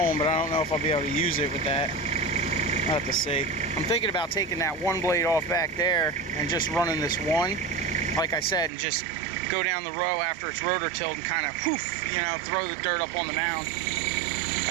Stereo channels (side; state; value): left; drops out; at 8.7 s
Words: but I don't know if I'll be able to use it with that. I'll have to see. I'm thinking about taking that one blade off back there and just running this one, like I said, and just go down the row after it's rotor tilled and kind of, whoof, you know, throw the dirt up on the mound.